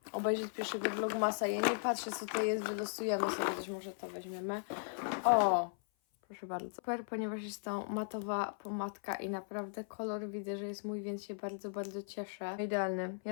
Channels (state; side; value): silent; right; 53 dB below the other